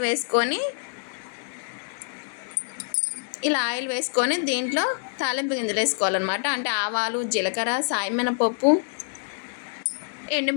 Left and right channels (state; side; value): silent; right; digital silence